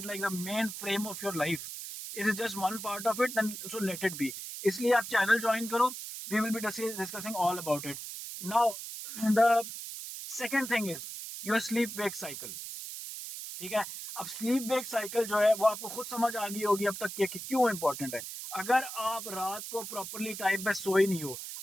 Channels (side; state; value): right; noise; hiss, 8 dB below the sound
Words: like the main frame of your life. It is just one part of it, then so let it be. इसलिए आप channel join करो, we will be discussing all about it. Now the second thing is your sleep wake cycle। ठीक है, अब sleep wake cycle जो है वो आपको खुद समझ आ गई होगी अब तक कि क्यों इंपॉर्टेंट है। अगर आप रात को प्रॉपरली टाइम पे सोए नहीं हो,